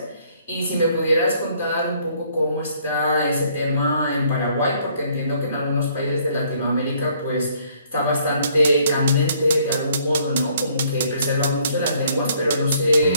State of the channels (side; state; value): both; inverted; correlation -0.63